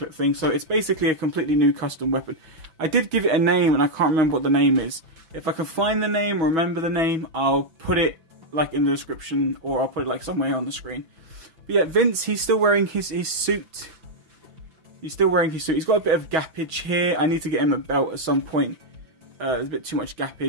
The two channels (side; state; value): left; late; 6.3 ms